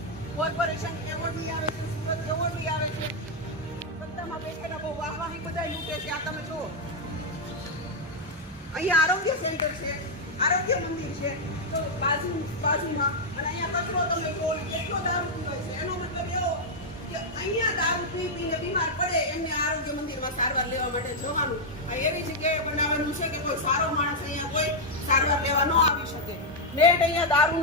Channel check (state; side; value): normal; both; correlation -0.02